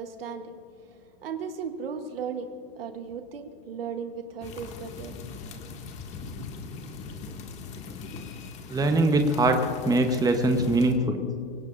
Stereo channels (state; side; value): normal; both; correlation 0.48